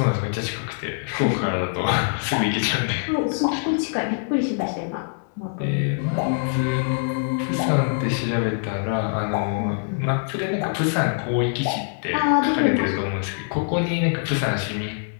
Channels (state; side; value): silent; right; digital silence